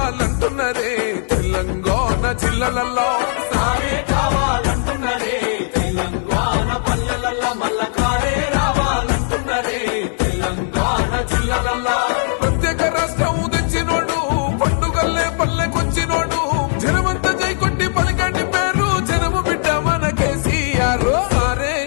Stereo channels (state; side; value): silent; right; 61 dB below the other